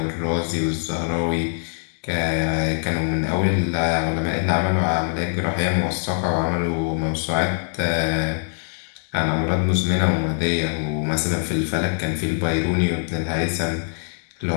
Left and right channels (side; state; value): right; silent; 64 dB below the other